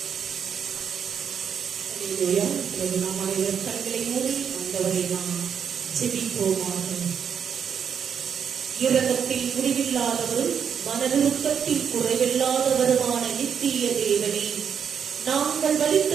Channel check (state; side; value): quieter; left; 7.6 dB